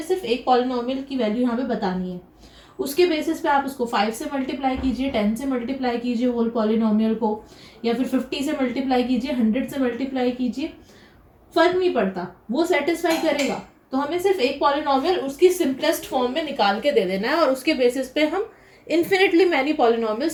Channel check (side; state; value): both; identical; correlation 1.00